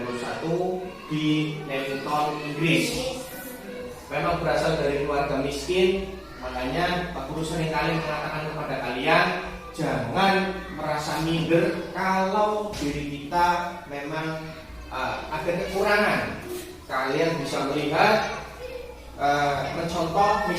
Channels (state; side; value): identical; both; correlation 1.00